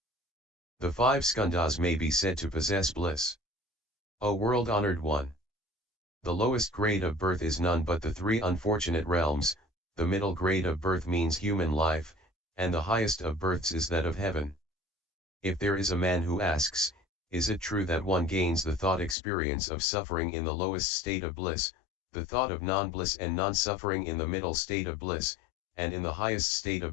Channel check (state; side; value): drops out; right; at 19.2 s